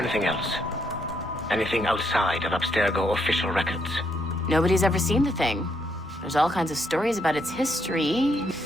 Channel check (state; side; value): normal; both; correlation 0.75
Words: else? Anything outside of Abstergo official records? Nobody's ever seen the thing. There's all kinds of stories about its history.